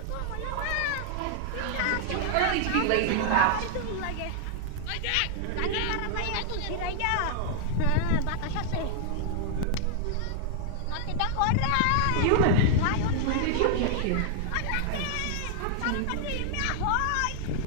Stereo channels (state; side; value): different; both; correlation 0.00